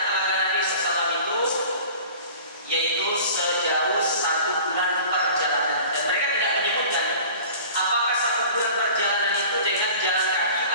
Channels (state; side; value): inverted; both; correlation -0.42